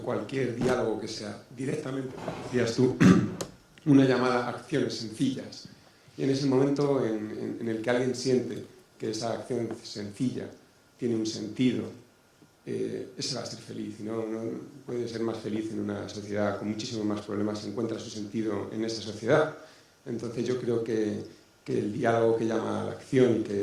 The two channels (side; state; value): both; identical; correlation 1.00